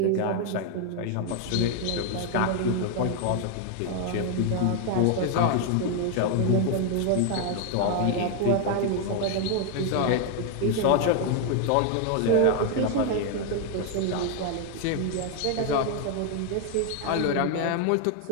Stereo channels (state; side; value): different; both; correlation 0.01